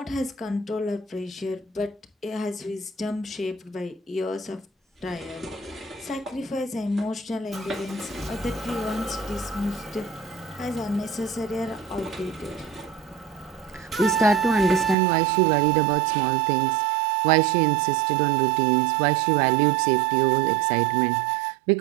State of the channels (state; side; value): drops out; left; at 15.0 s